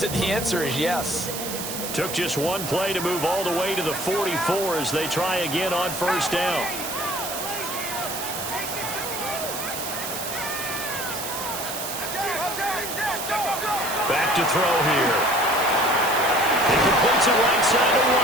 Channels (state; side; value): noise; right; hiss, 6 dB below the sound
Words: the answer is yes. Took just one play to move all the way to the 44 as they try again on first down. Back to throw here. He completes it right side